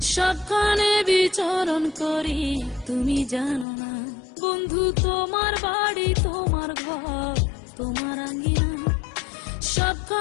সবখানে বিচরণ করি তুমি জানো না। বন্ধু তোমার বাড়ি তোমার ঘর তোমার আঙ্গিনা,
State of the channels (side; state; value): right; drops out; at 3.7 s